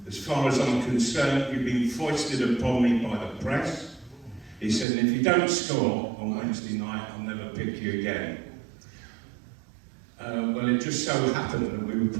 as far as I'm concerned, you've been foisted upon me by the press. He said, and if you don't score on Wednesday night, I'll never pick you again. Well, it just so happened that we were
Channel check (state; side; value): drops out; left; at 4.9 s